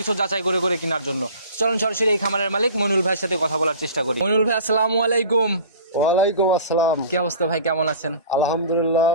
যাচাই করে করে কেনার জন্য। চলুন সরাসরি এই খামারের মালিক মইনুল ভাইয়ের সাথে কথা বলার চেষ্টা করি। মইনুল ভাই, আসসালামু আলাইকুম। ওয়ালাইকুম আসসালাম। কি অবস্থা ভাই, কেমন আছেন? আলহামদুলিল্লাহ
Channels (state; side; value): inverted; both; correlation -0.42